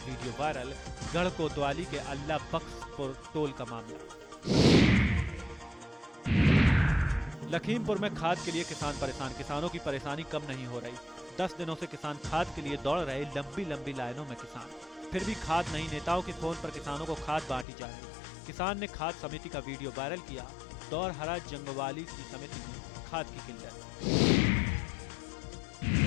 वायरल। गढ़ कोतवाली के अल्लाह बख्शपुर टोल का मामला। लखीमपुर में खाद के लिए किसान परेशान। किसानों की परेशानी कम नहीं हो रही। 10 दिनों से किसान खाद के लिए दौड़ रहे। लंबी लंबी लाइनों में किसान, फिर भी खाद नहीं। नेताओं के फोन पर किसानों को खाद बांटी जा रही। किसान ने खाद समिति का वीडियो वायरल किया। दौरहरा जंगवाली की समिति में खाद की किल्लत।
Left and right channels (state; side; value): drops out; right; at 17.7 s